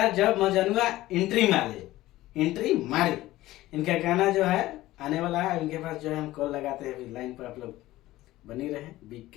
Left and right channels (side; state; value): right; quieter; 16.5 dB